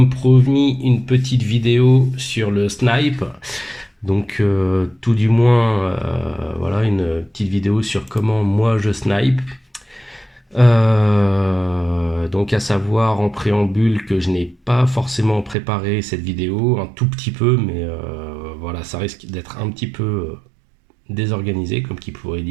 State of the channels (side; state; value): left; drops out; at 15.6 s